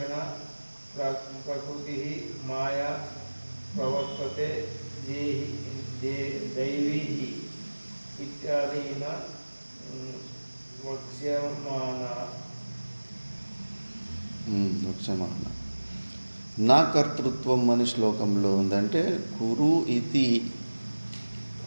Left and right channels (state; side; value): inverted; both; correlation -1.00